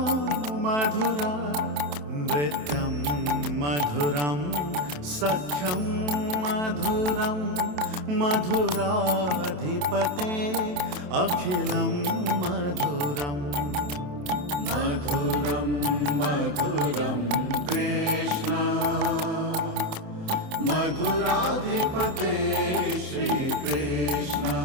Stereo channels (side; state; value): left; late; 27 ms